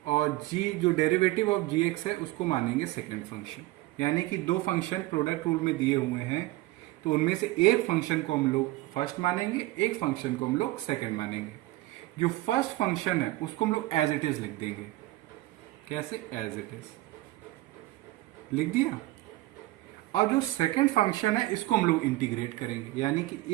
और g जो डेरिवेटिव ऑफ gx है उसको मानेंगे सेकंड फंक्शन। यानी कि दो फंक्शन प्रोडक्ट रूल में दिए हुए हैं तो उनमें से एक फंक्शन को हम लोग फर्स्ट मानेंगे, एक फंक्शन को हम लोग सेकंड मानेंगे। जो फर्स्ट फंक्शन है उसको हम लोग एज इट इज लिख देंगे। कैसे? एज इट इज लिख दिया। और जो सेकंड फंक्शन है इसको हम लोग इंटीग्रेट करेंगे, यानी कि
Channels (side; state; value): left; quieter; 18.3 dB